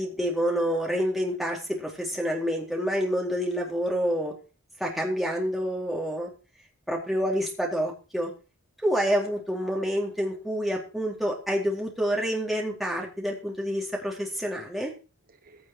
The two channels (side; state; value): both; normal; correlation 0.78